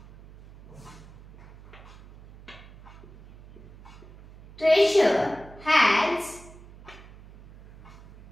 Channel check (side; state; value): right; noise; hum, 20 dB below the sound